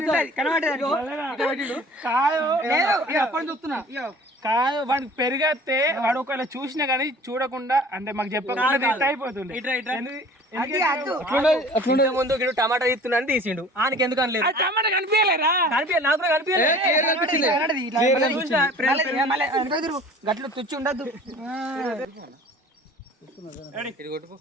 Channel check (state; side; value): normal; both; correlation 0.46